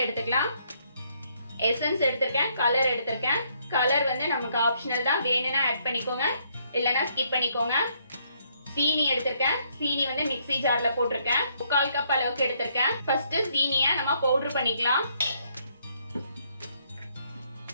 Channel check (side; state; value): both; inverted; correlation -0.70